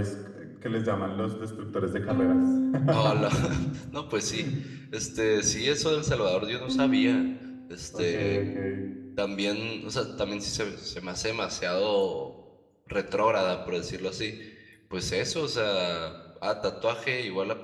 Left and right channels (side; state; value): both; identical; correlation 1.00